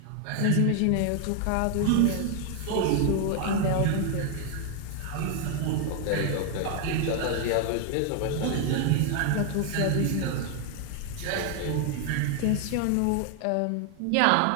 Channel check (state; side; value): different; both; correlation 0.00